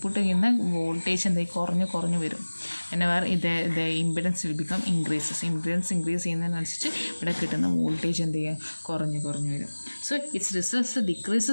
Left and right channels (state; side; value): inverted; both; correlation -1.00